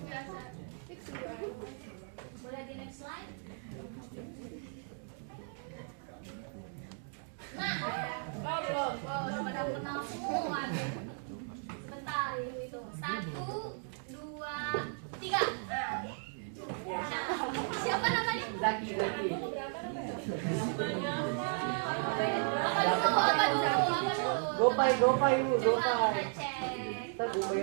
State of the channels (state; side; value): silent; left; 54 dB below the other